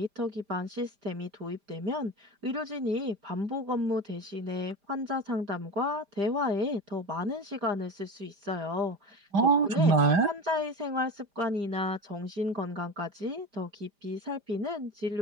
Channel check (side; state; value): left; late; 5.0 ms